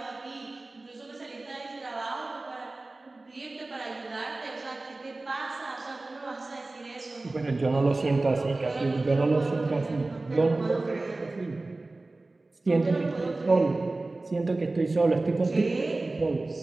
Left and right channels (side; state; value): left; quieter; 3.1 dB